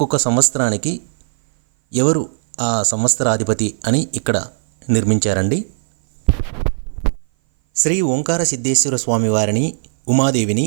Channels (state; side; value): silent; left; 58 dB below the other